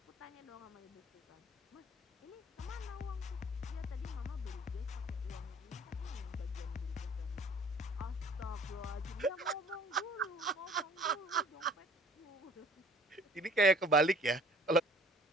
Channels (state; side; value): normal; both; correlation 0.52